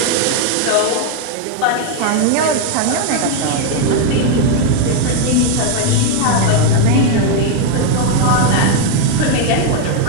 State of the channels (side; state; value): both; different; correlation 0.01